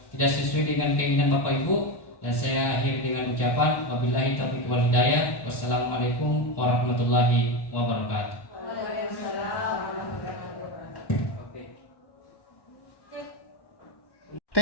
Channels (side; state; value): right; late; 1.1 ms